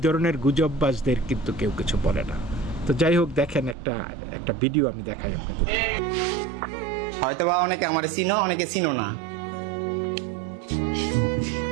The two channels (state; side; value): drops out; left; at 3.8 s